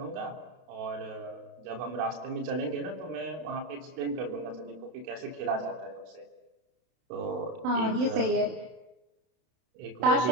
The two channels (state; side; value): late; left; 32 ms